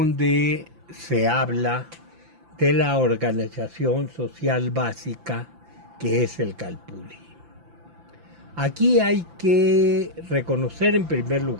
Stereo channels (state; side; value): late; left; 5.9 ms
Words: se habla de la organización social básica que es el Calpulli. Aquí hay que reconocer en primer